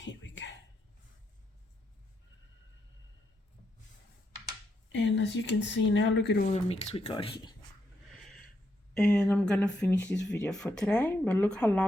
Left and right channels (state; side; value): normal; both; correlation 0.79